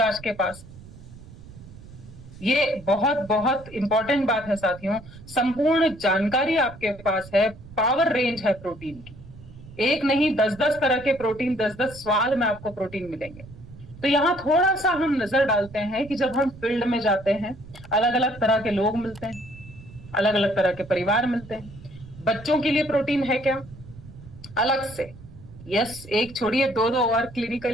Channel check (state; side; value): noise; right; rumble, 18 dB below the sound